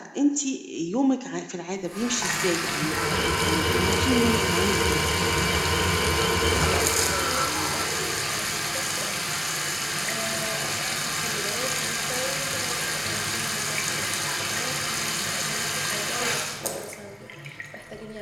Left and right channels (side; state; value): both; identical; correlation 1.00